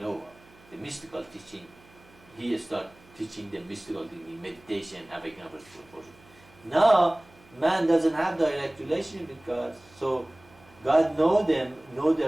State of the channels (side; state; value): right; noise; hum, 27 dB below the sound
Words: The mystical teaching, he starts teaching the mystical thing, meditation, having a portion. Now, man doesn't have direct relationship with God, so God know